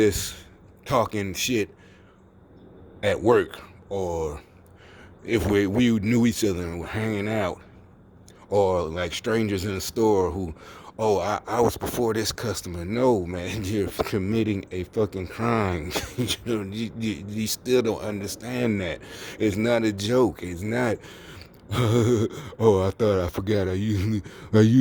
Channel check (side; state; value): both; identical; correlation 1.00